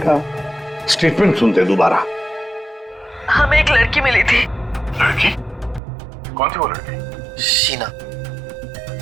का स्टेटमेंट सुनते हैं दोबारा। हमें एक लड़की मिली थी। लड़की? कौन थी वो लड़की? शीना,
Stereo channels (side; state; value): left; drops out; at 5.8 s